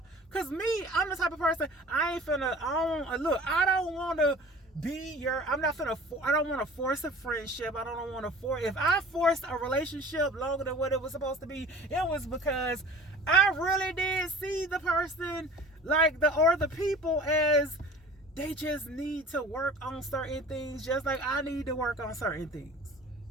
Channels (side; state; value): both; normal; correlation 0.43